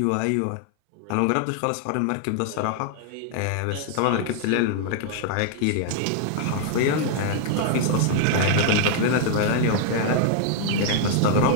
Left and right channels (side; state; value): both; different; correlation 0.00